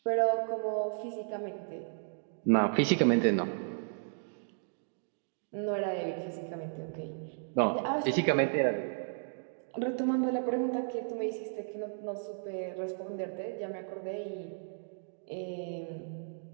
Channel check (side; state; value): left; silent; digital silence